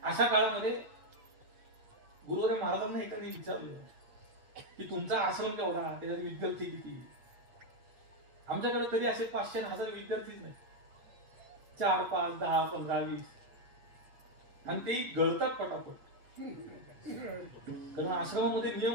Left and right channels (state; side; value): late; left; 8.1 ms